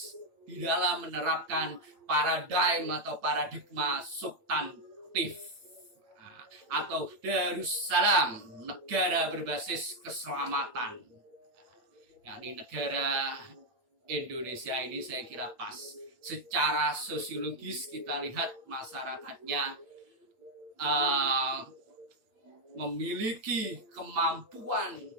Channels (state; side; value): late; left; 8.7 ms